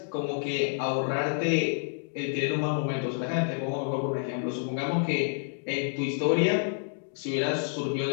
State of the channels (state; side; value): silent; right; 57 dB below the other